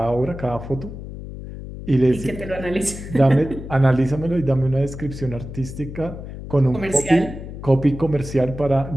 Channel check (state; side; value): noise; left; hum, 11 dB below the sound